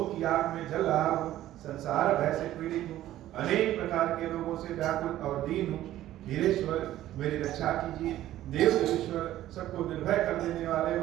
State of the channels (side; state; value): left; quieter; 13.8 dB